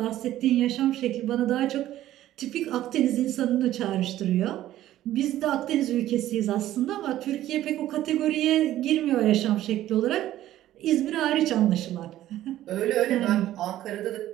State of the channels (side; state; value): left; quieter; 13.6 dB